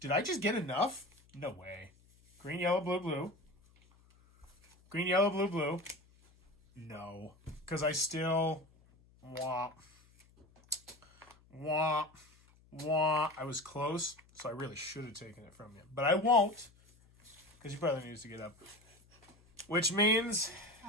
Did I just get enough? No way. Green, yellow, blue, blue. Green, yellow, blue, blue. No. Because I still... Wah. Wah. Wah. I was close, so I really should have taken it from you. But I won't, because your brother needs to get up. Which means...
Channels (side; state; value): left; noise; hum, 29 dB below the sound